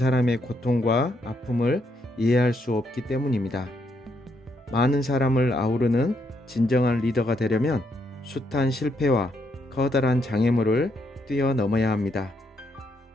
고통과 아픔을 이해할 수 없기 때문입니다. 많은 사람을 아우르는 진정한 리더가 되려면 숱한 실패와 커다란 장애물을 뛰어넘어야 합니다.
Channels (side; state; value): both; normal; correlation 0.76